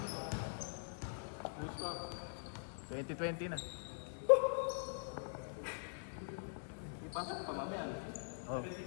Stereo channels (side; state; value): right; silent; digital silence